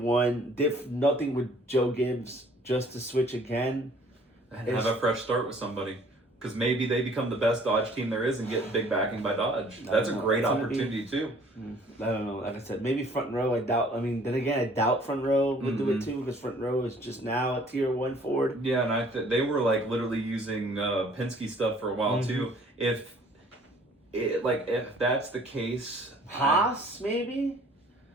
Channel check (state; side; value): normal; both; correlation 0.56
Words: nothing with Joe Gibbs, just to switch again? And have a fresh start with somebody. Because maybe they become the best Dodge team there is and get big backing by Dodge. That's a great opportunity too. I don't know. Like I said, maybe front row. I doubt. I mean, then again, I doubt front row would do it too, because front row is just now a tier one Ford. Yeah, and they were like literally using Penske stuff for a while too. If that's the case, Haas maybe.